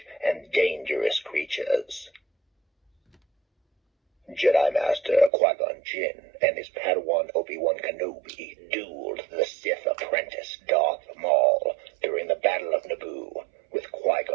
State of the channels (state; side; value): drops out; left; at 5.3 s